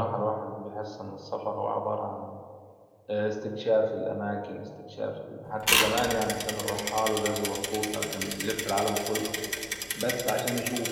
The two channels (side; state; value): both; identical; correlation 1.00